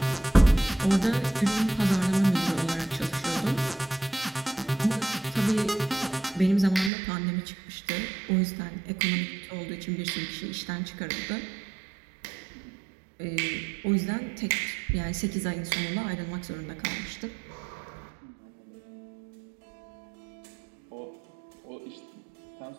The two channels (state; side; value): drops out; left; at 6.9 s